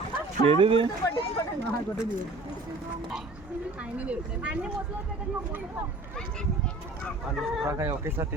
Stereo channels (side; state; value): left; quieter; 3.0 dB